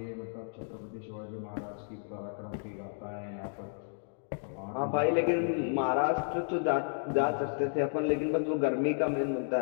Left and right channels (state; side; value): silent; right; digital silence